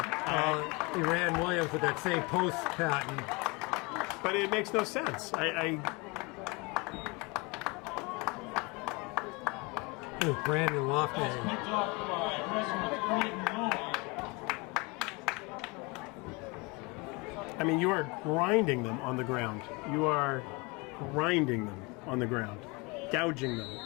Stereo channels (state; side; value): quieter; right; 27.6 dB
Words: He ran Williams with that same post pattern. But it makes no sense. Brandon Lofty. Picked off by Westwood, 3rd and goal. I mean, you are grinding them on the ground. You are grinding them on the ground. Gouging them